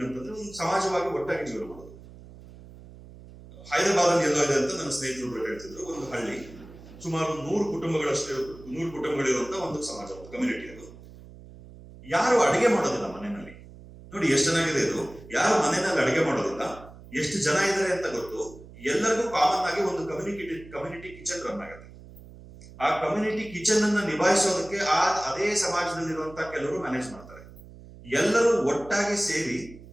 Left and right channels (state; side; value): noise; right; hum, 18 dB below the sound